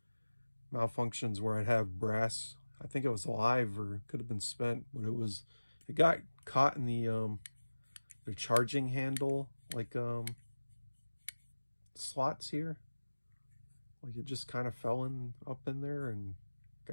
malfunctions where I'd have brass. I think it was live or could have been spent, but it got caught in the charging handle, like slots here. Like it just kind of fell up in there and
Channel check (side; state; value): both; inverted; correlation -1.00